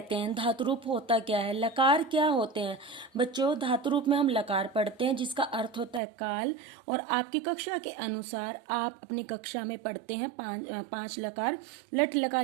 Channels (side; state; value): left; drops out; at 6.0 s